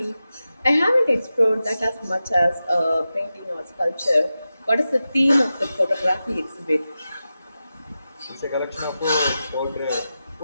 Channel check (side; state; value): both; inverted; correlation -0.92